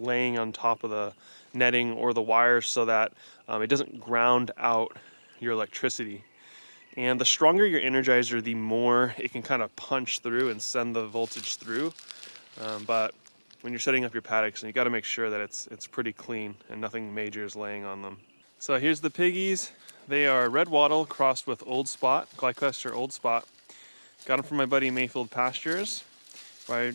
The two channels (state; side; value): inverted; both; correlation -1.00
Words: on top of the netting or the wires so that it doesn't ground out your electricity. And the stronger your Energizer, the more it can kind of punch through and send the voltage through. But when you're setting up your paddocks, you got to make sure that it's pretty clean and nothing major is laying on them. So here's the piggies. They are red wattle crossed with old spot, Glycester old spot. Got them from my buddy Mayfield Pastures. I